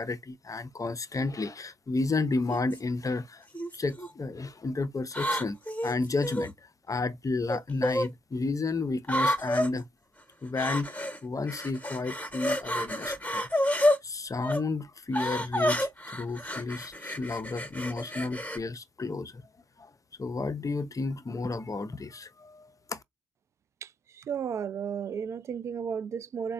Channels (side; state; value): both; normal; correlation 0.80